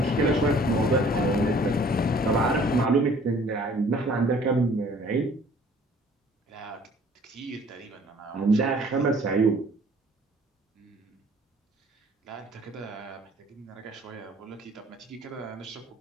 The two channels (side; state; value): both; normal; correlation 0.54